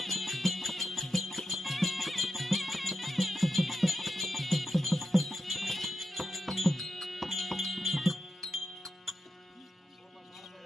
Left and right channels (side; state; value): both; normal; correlation 0.88